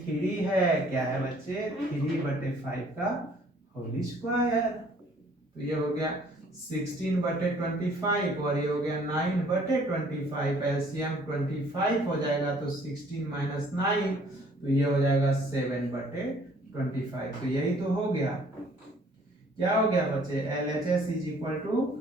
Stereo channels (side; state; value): both; normal; correlation 0.58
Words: 3 है, क्या है बच्चे 3 बटे 5 का होल स्क्वायर, तो ये हो गया 16 बटे 25 और ये हो गया 9 बटे 25, एलसीएम 25 हो जाएगा, तो 16 माइनस 9, तो ये हो जाएगा 7 बटे 25, तो यही तो हो गया, क्या हो गया बच्चे, LHS is equal to